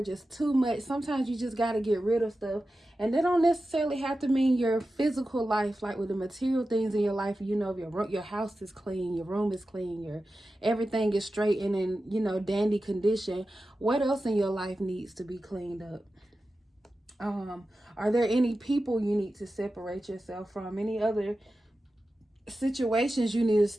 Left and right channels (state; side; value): normal; both; correlation 0.93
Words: just too much. Sometimes you just got to get rid of stuff, and they don't necessarily have to mean your physical life, like with the material things in your life. If your house is clean, your room is clean, your everything is straight and in dandy condition, what else in your life needs to be cleaned up? Are there any people you need to separate yourself from? Any other situations you need